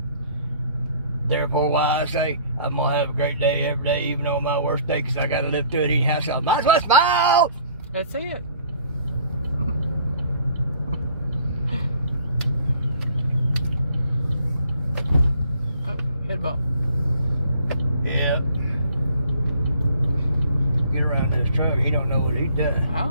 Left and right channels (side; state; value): both; inverted; correlation -0.56